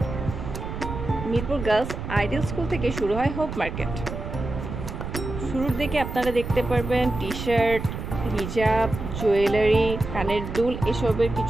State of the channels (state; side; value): noise; right; rumble, 7 dB below the sound